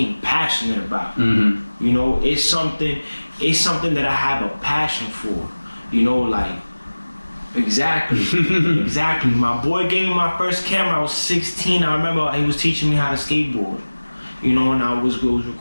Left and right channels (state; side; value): inverted; both; correlation -1.00